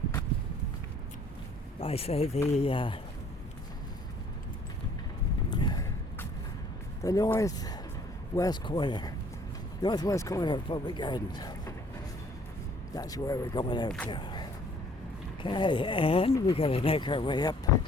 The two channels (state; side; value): normal; both; correlation 0.58